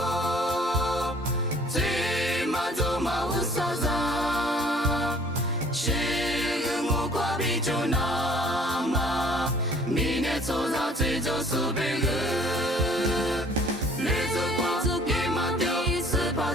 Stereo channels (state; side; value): normal; both; correlation 0.54